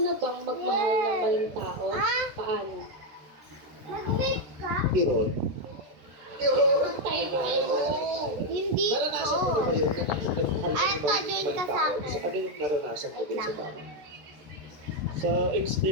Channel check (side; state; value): left; late; 14 ms